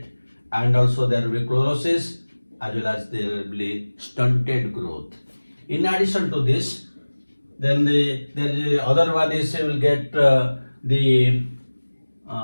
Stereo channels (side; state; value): both; inverted; correlation -1.00